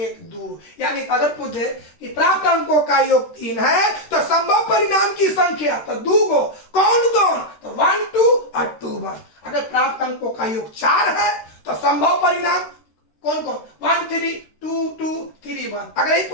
2, यानी अगर पूछे कि प्राप्त अंकों का योग 3 है तो संभव परिणाम की संख्या तो 2 गो, कौन कौन, तो 1 2 और 2 1। अगर प्राप्त अंकों का योग 4 है तो संभव परिणाम कौन कौन, 1 3 2 2 3 1। अगर यही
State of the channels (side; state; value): right; late; 13 ms